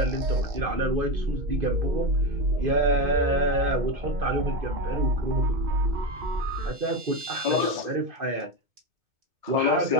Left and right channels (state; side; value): late; left; 2.2 ms